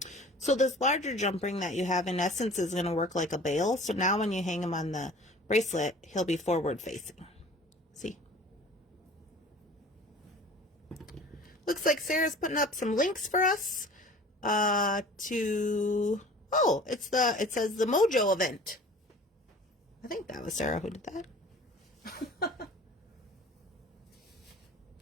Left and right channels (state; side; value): normal; both; correlation 0.45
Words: So this larger jump ring that you have in essence is going to work like a bail. So now when you hang him on the bracelet, he'll be forward facing. See? Looks like Sarah's putting up some links for us to, oh, it says the Mojo event. I think that was Sarah who did that.